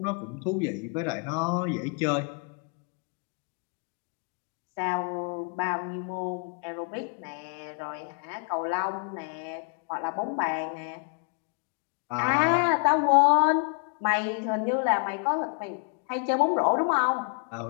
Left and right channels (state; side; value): quieter; right; 39.5 dB